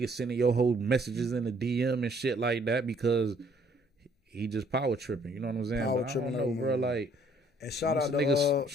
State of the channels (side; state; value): both; normal; correlation 0.63